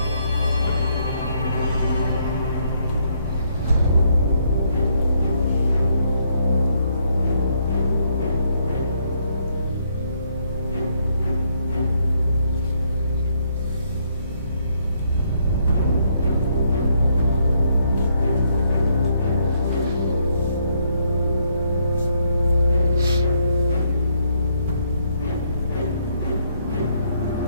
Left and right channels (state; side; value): inverted; both; correlation -0.72